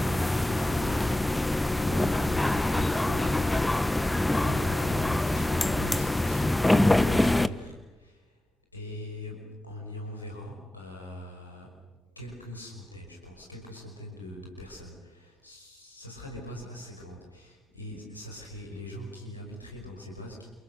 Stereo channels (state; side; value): normal; both; correlation 0.94